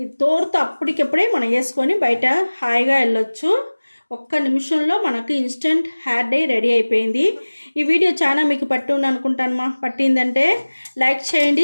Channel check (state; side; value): inverted; both; correlation -1.00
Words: తోరుతో అప్పటికప్పుడే మనం వేసుకొని బయట హాయిగా వెళ్ళొచ్చు. ఒక్క నిమిషంలో మనకు ఇన్స్టెంట్ హెయిర్ డై రెడీ అయిపోయింది. ఈ వీడియో చాలా మీకు పట్టింది అనుకుంటాను మా. పట్టిందంటే లైక్ చేయండి,